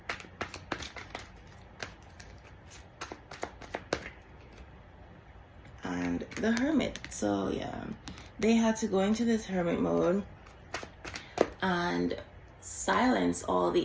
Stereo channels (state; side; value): identical; both; correlation 1.00